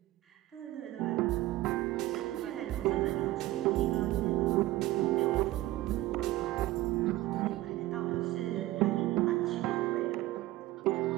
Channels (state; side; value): quieter; left; 16.9 dB